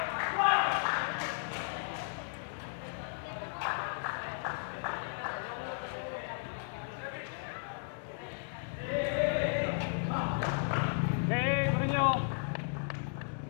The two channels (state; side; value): silent; right; digital silence